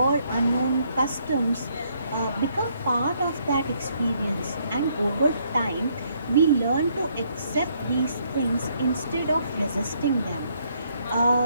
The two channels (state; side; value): inverted; both; correlation -0.70